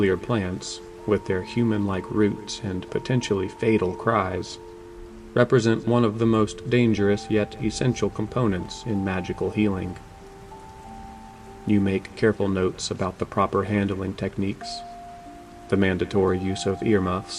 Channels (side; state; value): both; identical; correlation 1.00